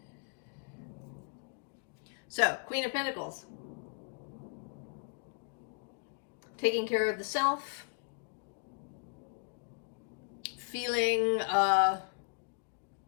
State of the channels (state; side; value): quieter; right; 39.2 dB